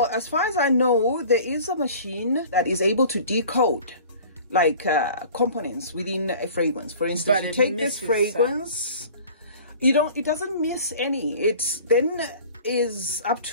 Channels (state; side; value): inverted; both; correlation -0.45